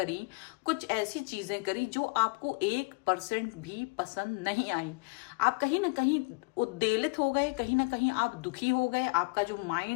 कुछ ऐसी चीजें करी जो आपको 1% भी पसंद नहीं आई। आप कहीं ना कहीं उद्वेलित हो गए, कहीं ना कहीं आप दुखी हो गए, आपका जो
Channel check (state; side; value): quieter; right; 30.9 dB